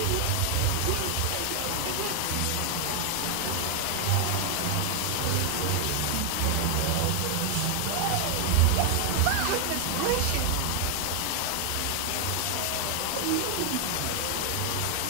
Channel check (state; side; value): different; both; correlation 0.00